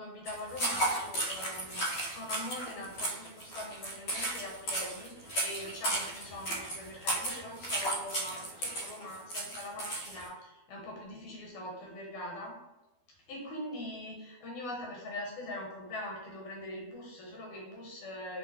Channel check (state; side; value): late; right; 12 ms